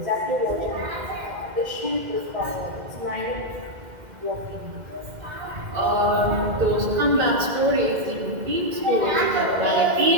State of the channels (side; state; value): left; late; 2.1 ms